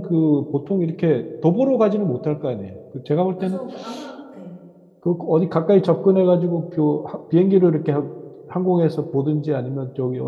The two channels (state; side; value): identical; both; correlation 1.00